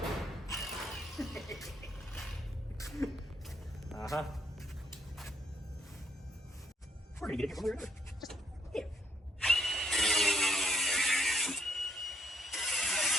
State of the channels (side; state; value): both; normal; correlation 0.71